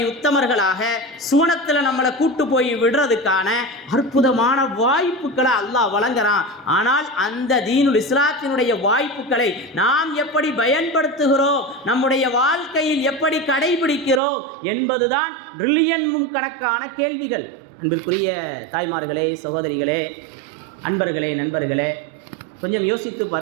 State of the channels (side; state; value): left; drops out; at 14.2 s